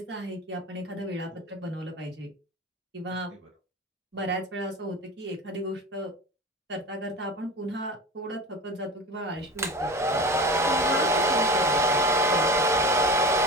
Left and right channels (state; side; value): normal; both; correlation 0.31